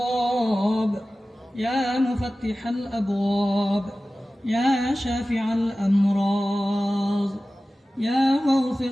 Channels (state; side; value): normal; both; correlation 0.96